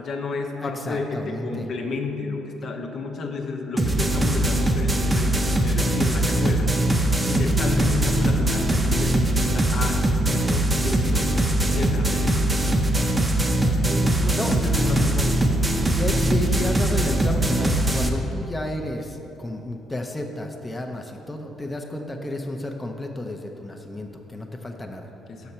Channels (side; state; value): both; normal; correlation 0.76